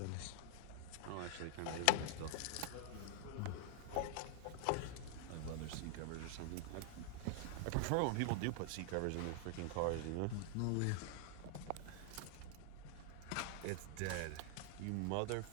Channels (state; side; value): different; both; correlation 0.00